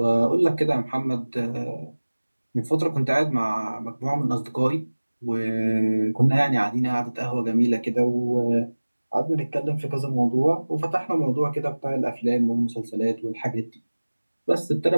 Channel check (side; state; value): both; inverted; correlation -1.00